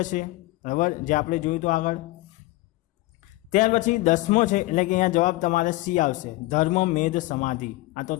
છે, બરાબર, જે આપણે જોયું તો આગળ. ત્યાર પછી 10મો છે, એટલે કે અહીંયા જવાબ તમારે સી આવશે ધર્મમેદ સમાધિ. આ તો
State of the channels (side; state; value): right; quieter; 19.5 dB